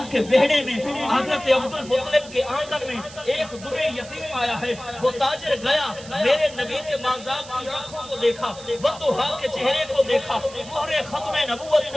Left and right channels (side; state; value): right; noise; hiss, 17 dB below the sound